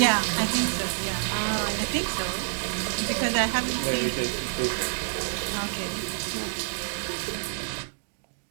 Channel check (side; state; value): left; silent; digital silence